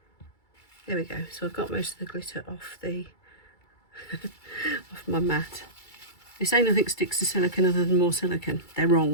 There we go. So I've got most of the glitter off the off my mat. They say nothing sticks to silicone other than more silicone. They're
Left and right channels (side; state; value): right; late; 2.3 ms